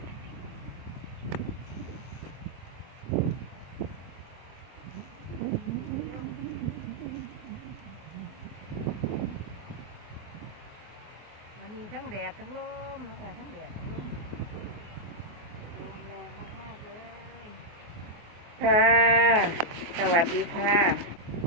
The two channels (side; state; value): left; late; 24 ms